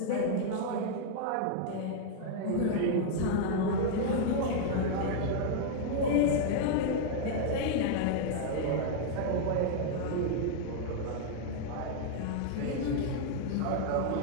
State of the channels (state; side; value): different; both; correlation -0.01